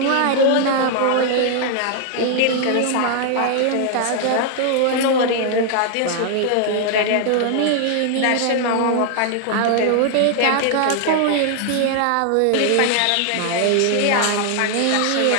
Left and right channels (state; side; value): different; both; correlation 0.00